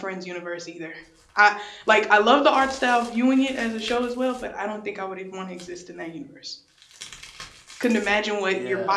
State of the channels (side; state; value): both; identical; correlation 1.00